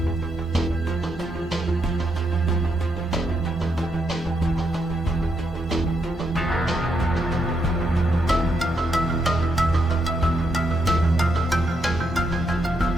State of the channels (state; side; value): normal; both; correlation 0.79